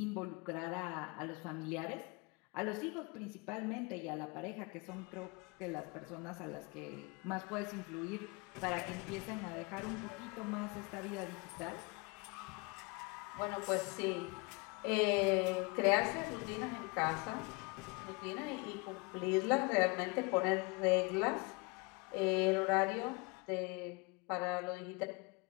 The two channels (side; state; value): right; quieter; 28.1 dB